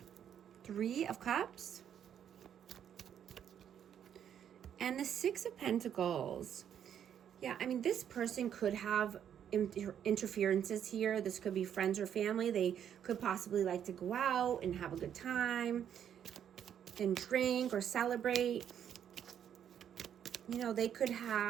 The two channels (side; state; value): left; quieter; 9.2 dB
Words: Three of Cups. And the Six of Pentacles. Yeah, I mean, this person could have interferences here. This could be friends or family. They could possibly like to go out and have a good time and drink or celebrate. You know, they could